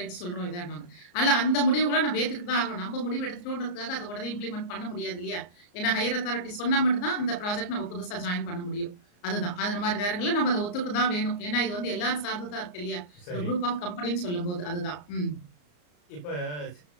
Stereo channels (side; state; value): right; late; 34 ms